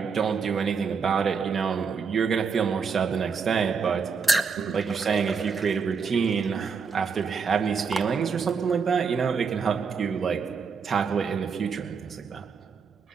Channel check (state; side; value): quieter; left; 5.6 dB